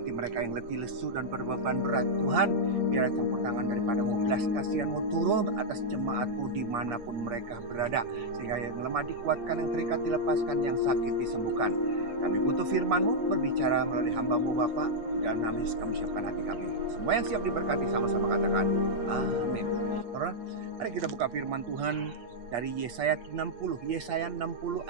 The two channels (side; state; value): left; late; 8.7 ms